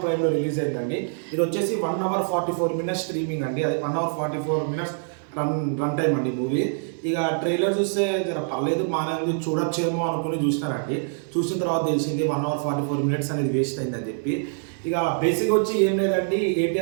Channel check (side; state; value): left; silent; 62 dB below the other